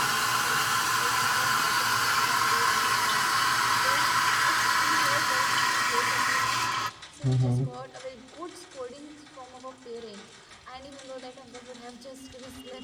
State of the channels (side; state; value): both; identical; correlation 1.00